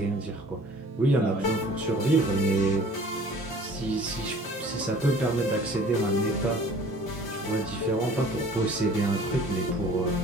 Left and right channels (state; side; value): normal; both; correlation 0.49